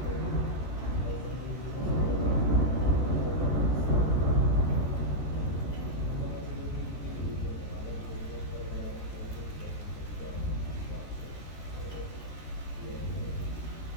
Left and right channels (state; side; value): late; right; 14 ms